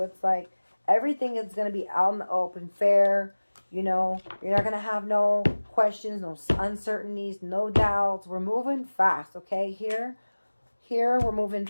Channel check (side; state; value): both; inverted; correlation -1.00